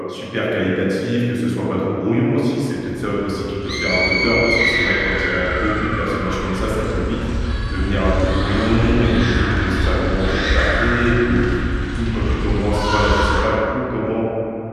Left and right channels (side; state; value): both; identical; correlation 1.00